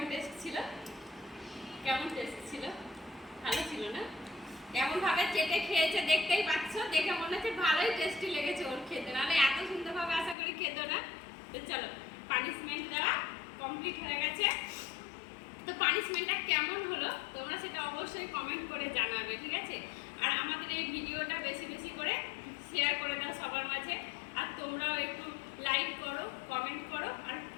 টেস্ট ছিল? কেমন টেস্ট ছিল? ভালো ছিল না? কেমন ভাবে চেটে খেয়েছে দেখতেই পাচ্ছ, দেখে মনে হচ্ছে ভালোই টেস্টি লেগেছে ওর খেতে, নাহলে এত সুন্দরভাবে আশা করি খেতো না। তো চলো, পানিশমেন্ট দেওয়া কমপ্লিট হয়ে গেছে। তো পানিশমেন্টটা কেমন হলো তোমরা সেটা অবশ্যই কমেন্ট করে জানাবে, ঠিক আছে? আর আমাদের এই ভিডিওটা বেশি বেশি করে শেয়ার করে দাও সবার মাঝে, আর তোমরাও একটু লাইক করো, কমেন্ট করো, আর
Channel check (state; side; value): drops out; right; at 10.4 s